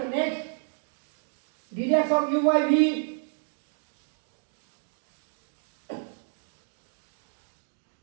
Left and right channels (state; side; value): silent; left; digital silence